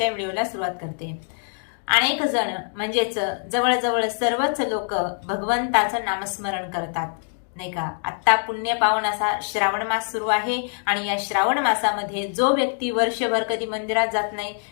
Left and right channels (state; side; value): silent; right; 63 dB below the other